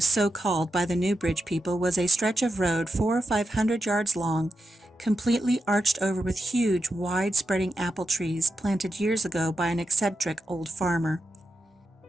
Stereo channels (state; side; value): normal; both; correlation 0.87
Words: so called by the Newbridge people, was a stretch of road 400 or 500 yards long, completely arched over with huge, wide-spreading apple trees planted years ago by an eccentric old farmer.